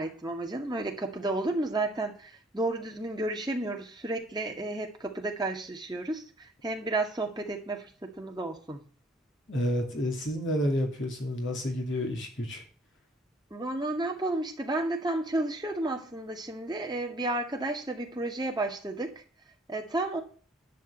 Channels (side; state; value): both; normal; correlation 0.59